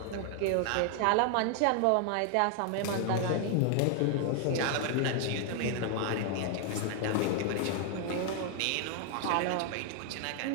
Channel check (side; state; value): both; different; correlation 0.00